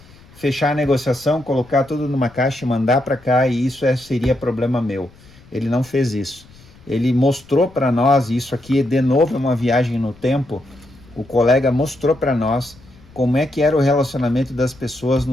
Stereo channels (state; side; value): noise; left; rumble, 25 dB below the sound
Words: fechar a negociação, colocar tudo numa caixa e mandar para cá, e isso seria problema meu. Ele não fez isso. Ele mostrou para nós, e isso aqui de novo é uma viagem no tempo, o colega mostrou para nós como é que era o relacionamento das pessoas